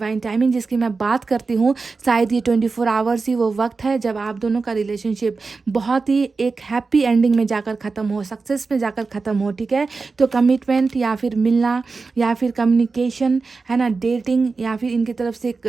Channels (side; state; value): left; quieter; 4.2 dB